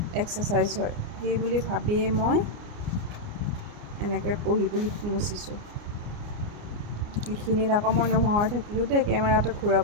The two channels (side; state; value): left; late; 29 ms